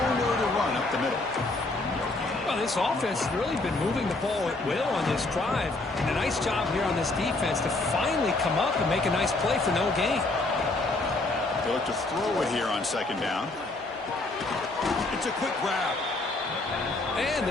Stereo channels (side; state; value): right; quieter; 3.0 dB